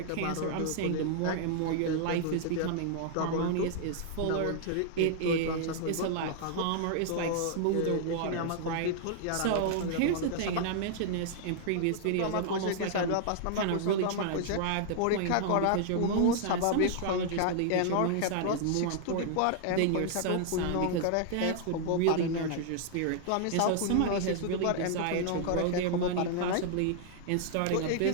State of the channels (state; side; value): different; both; correlation -0.01